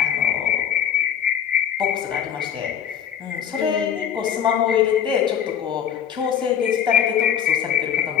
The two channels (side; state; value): right; quieter; 8.7 dB